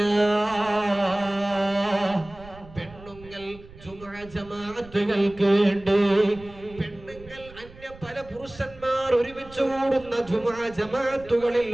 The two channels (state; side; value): noise; right; rumble, 20 dB below the sound